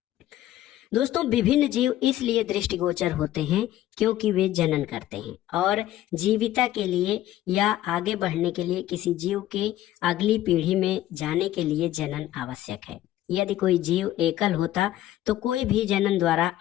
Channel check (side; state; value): right; quieter; 13.8 dB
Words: दोस्तों, विभिन्न जीव इसलिए दृष्टिगोचर होते हैं क्योंकि वे जनन करते हैं और जीविता के लिए या आगे बढ़ने के लिए किसी जीव के अगली पीढ़ी में जाने के लिए जनन आवश्यक है। यदि कोई जीव एकल होता तो कोई भी जनन द्वारा